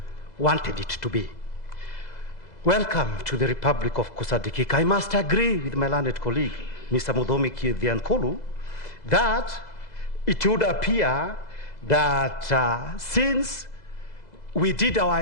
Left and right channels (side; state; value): right; late; 2.0 ms